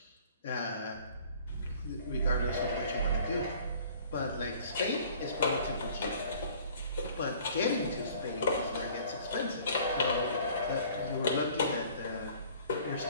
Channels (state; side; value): inverted; both; correlation -0.52